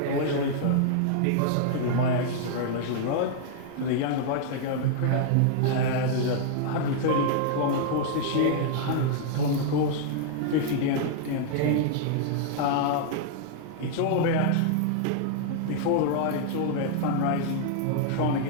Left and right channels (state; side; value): different; both; correlation -0.01